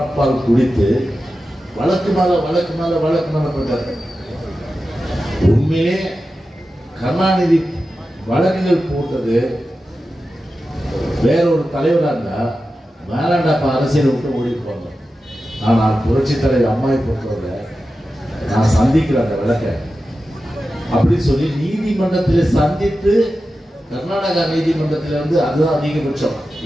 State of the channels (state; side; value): normal; both; correlation 0.92